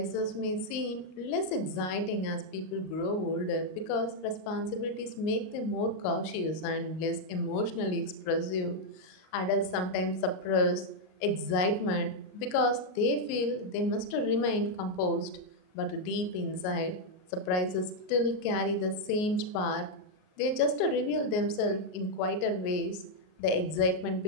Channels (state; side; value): late; right; 38 ms